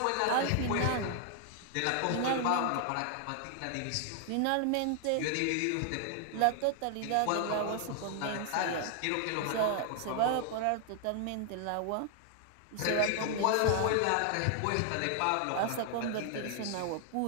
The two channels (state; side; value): different; both; correlation 0.00